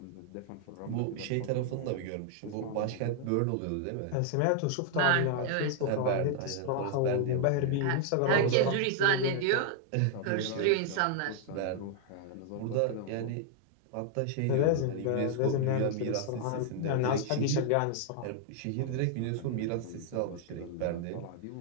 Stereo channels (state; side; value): different; both; correlation 0.00